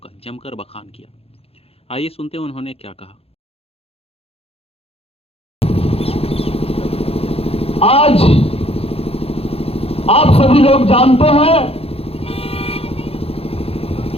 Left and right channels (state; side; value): late; right; 0.28 ms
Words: जमकर बखान किया। आइए सुनते हैं उन्होंने क्या कहा। आज आप सभी लोग जानते हैं